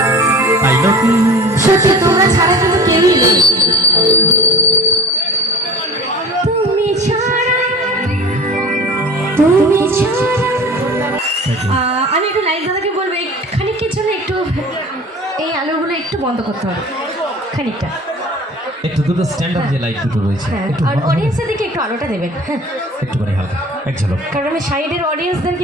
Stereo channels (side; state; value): both; normal; correlation 0.40